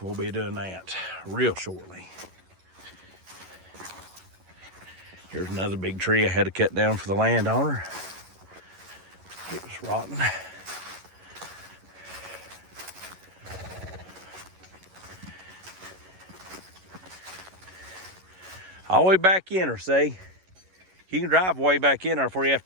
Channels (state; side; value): late; left; 11 ms